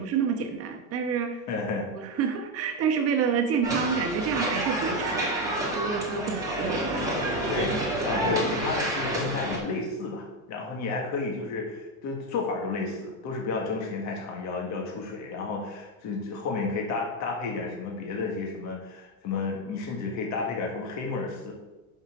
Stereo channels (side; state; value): both; normal; correlation 0.08